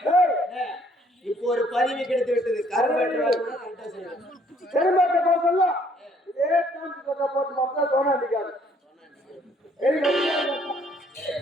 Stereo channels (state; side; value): normal; both; correlation 0.64